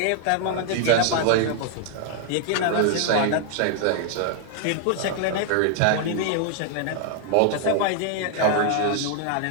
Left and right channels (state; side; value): different; both; correlation 0.00